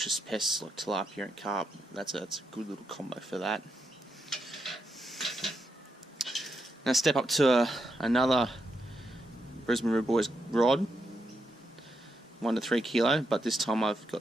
pests like tilapia and carp. That's a good little combo for that. Now step up to another Brisbane River Boys rod, 1 to 3 kilo, but this time I've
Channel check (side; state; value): both; normal; correlation 0.82